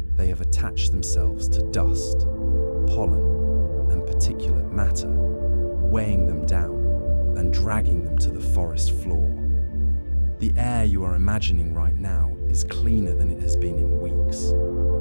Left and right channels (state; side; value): inverted; both; correlation -1.00